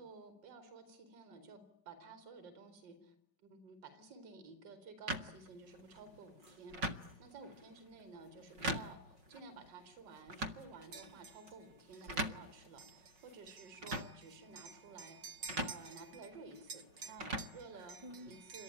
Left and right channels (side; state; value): left; late; 5.5 ms